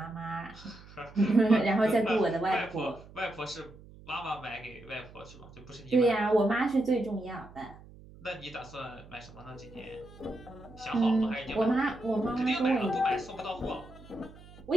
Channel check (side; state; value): right; noise; hum, 20 dB below the sound